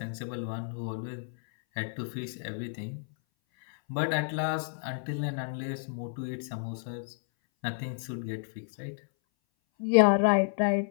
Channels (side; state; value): right; silent; 57 dB below the other